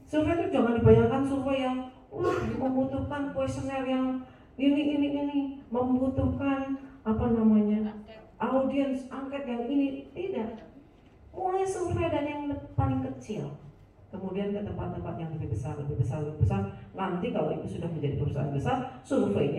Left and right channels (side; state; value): both; identical; correlation 1.00